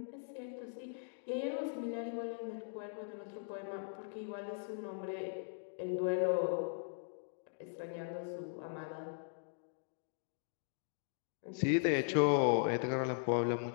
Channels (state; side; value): silent; right; digital silence